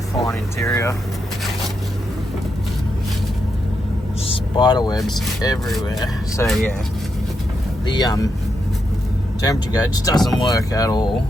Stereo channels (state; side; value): normal; both; correlation 0.83